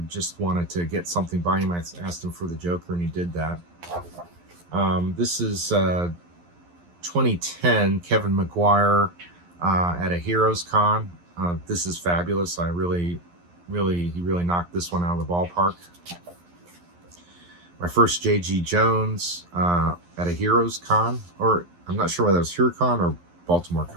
just wanted to get something by him. I asked him for the Joker, and he did that. This is 2010, Kevin McGuire at a Heroes Con. This is fabulous. He really knocked this one out of the ballpark. My first J.G. Jones at a Heroes Con, or I'm not sure whether it was HeroCon or Baltimore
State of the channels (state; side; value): late; left; 11 ms